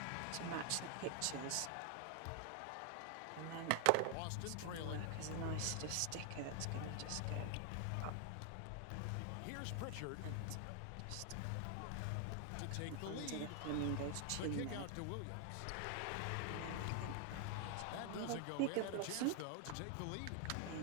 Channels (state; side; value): different; both; correlation 0.00